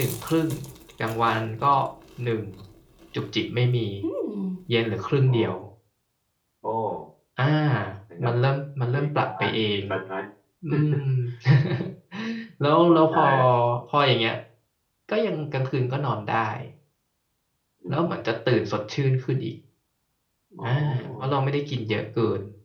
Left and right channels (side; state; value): both; identical; correlation 1.00